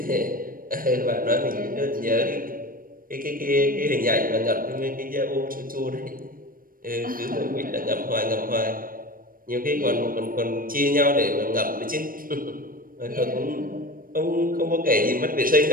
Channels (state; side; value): late; left; 0.41 ms